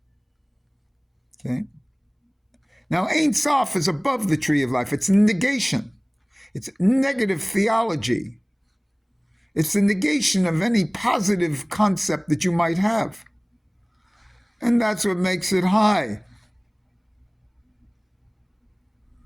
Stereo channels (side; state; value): both; identical; correlation 1.00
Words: Okay? Now, Ein Sof is above the tree of life. It's negation. It's negative theology. It's the negation of any positive concept that you might have. And that's what makes it high.